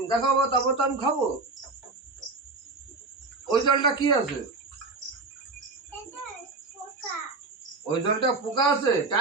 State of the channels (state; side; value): quieter; left; 3.6 dB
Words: দেখাবো তারপর তো আমি খাবো। ওই জলটা কি আছে? এটা পোকা। ওই জলটা পোকা আছে?